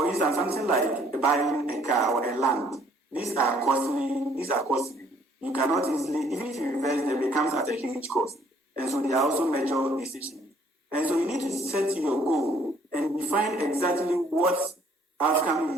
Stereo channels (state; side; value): normal; both; correlation 0.62